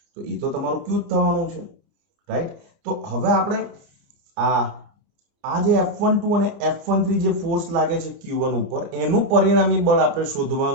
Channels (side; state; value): left; late; 29 ms